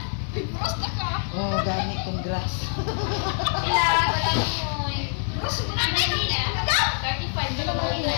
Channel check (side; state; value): right; silent; 62 dB below the other